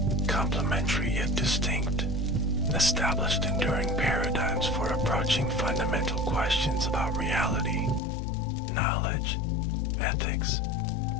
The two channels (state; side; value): drops out; right; at 8.0 s